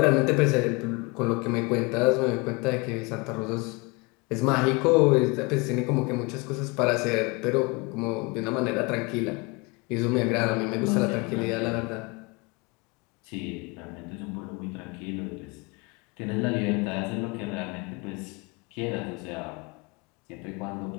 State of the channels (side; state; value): right; quieter; 27.6 dB